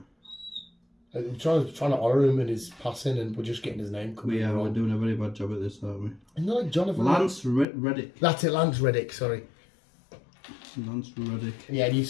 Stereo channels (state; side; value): drops out; right; at 7.7 s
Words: I'm trying to honour him in his passing, and we're just getting his name. We're doing a very bad job at this, aren't we? Isn't that like Jonathan? Lance Reddick. That's it, Lance Reddick. Sorry. Lance Reddick. Yeah, and you